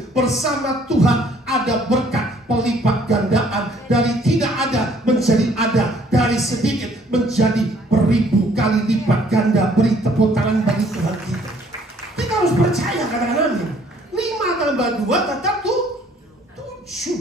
Bersama Tuhan ada berkat pelipat gandaan. Dari tidak ada menjadi ada, dari sedikit menjadi beribu kali lipat ganda. Beri tepuk tangan bagi Tuhan kita. Kita harus percaya, katakan amin. 5 tambah 2 tetap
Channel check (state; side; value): normal; both; correlation 0.61